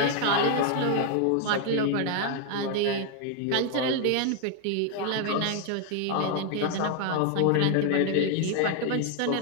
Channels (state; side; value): different; both; correlation 0.00